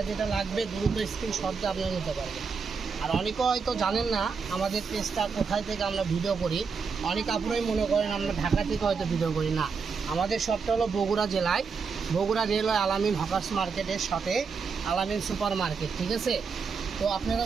যেটা লাগবে দ্রুত স্ক্রিনশট দিয়ে আপনারা নিতে পারবেন। আর অনেকে হয়তো জানেন না আমাদের পেজটা কোথায় থেকে আমরা ভিডিও করি। অনেক আপুরাই মনে করেন আমরা ঢাকা থেকে হয়তো ভিডিও করি না। আমাদের শপটা হলো বগুড়া জেলায়, বগুড়া রেলওয়ে আলামিন হকার্স মার্কেটের সাথে আলামিন সুপার মার্কেট, ঠিক আছে। তো আপনারা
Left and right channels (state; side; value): quieter; left; 5.4 dB